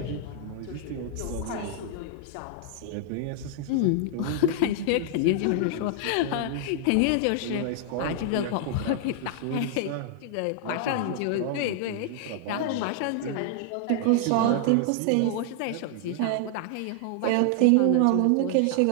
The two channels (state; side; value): different; both; correlation 0.00